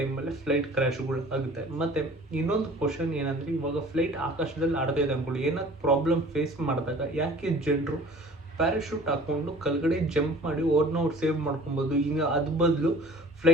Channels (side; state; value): both; normal; correlation 0.47